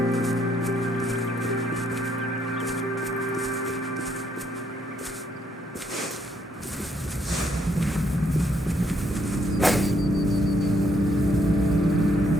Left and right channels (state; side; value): normal; both; correlation 0.71